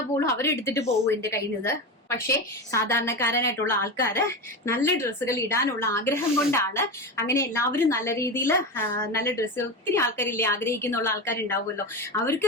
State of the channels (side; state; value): both; normal; correlation 0.21